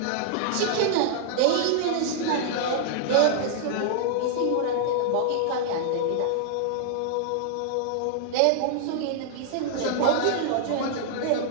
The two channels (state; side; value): different; both; correlation -0.01